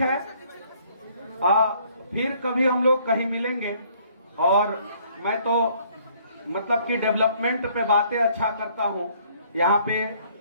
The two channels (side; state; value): both; inverted; correlation -0.62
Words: है, फिर कभी हम लोग कहीं मिलेंगे। और मैं तो मतलब कि डेवलपमेंट पे बातें अच्छा करता हूँ। यहाँ पे